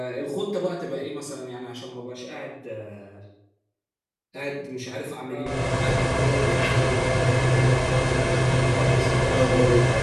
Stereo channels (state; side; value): identical; both; correlation 1.00